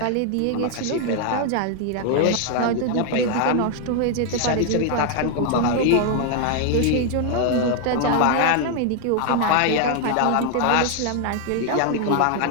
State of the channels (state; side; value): different; both; correlation 0.00